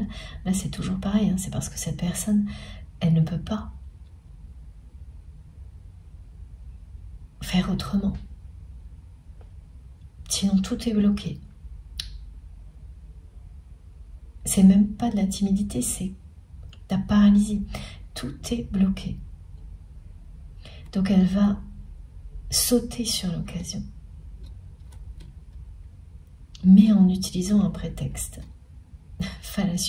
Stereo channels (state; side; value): identical; both; correlation 1.00